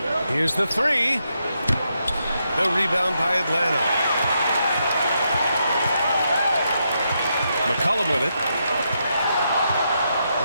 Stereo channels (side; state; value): both; inverted; correlation -0.81